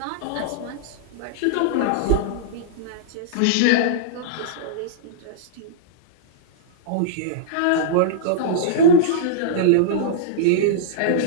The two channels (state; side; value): different; both; correlation -0.02